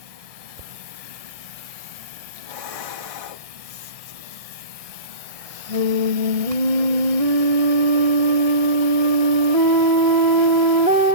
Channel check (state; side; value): late; left; 1.6 ms